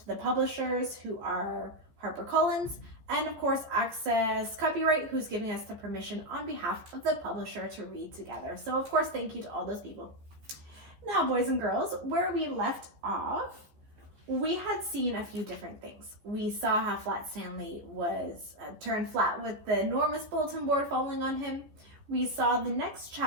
the publishers who are HarperCollins, and of course Access Copyright, who's giving us the permission on behalf of the publisher to read together. So of course thank you to all those people. Now boys and girls, where we left off, we had seen a few different things. We saw how Flat Stanley was turned flat with the enormous bulletin board falling on him. We saw the next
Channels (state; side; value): late; left; 14 ms